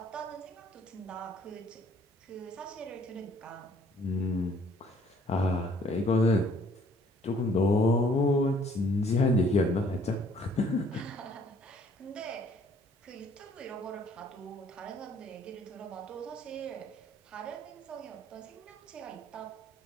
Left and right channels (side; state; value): both; normal; correlation 0.60